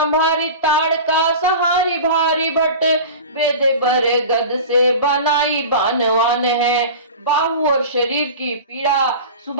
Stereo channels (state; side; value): inverted; both; correlation -0.34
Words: ताड़का सहारी भारी भट। वेद बर गद से बनाई बानवान है। बाहु और शरीर की पीड़ा